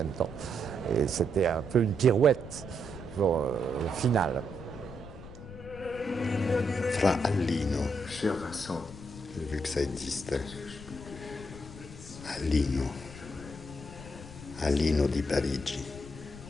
temps. Et c'était un peu une pirouette pour, au final. Fra Allino, Cher Vincent, vu que ça existe, Allino di Parigi,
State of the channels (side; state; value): left; noise; rumble, 14 dB below the sound